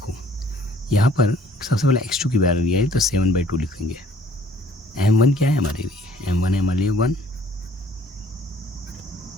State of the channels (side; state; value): both; normal; correlation 0.57